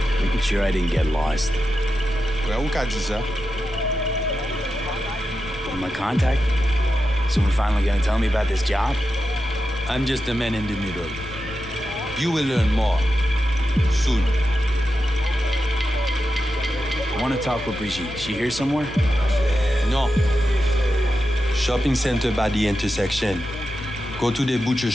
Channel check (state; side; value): normal; both; correlation 0.89